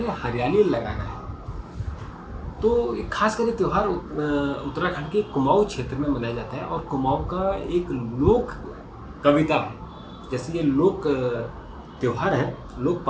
हरियाली लगाना है। तो खास करके त्यौहार उत्तराखंड के कुमाऊं क्षेत्र में मनाया जाता है और कुमाऊं का एक लोक कविता है। जैसे ये लोक त्यौहार है, लोक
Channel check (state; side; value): identical; both; correlation 1.00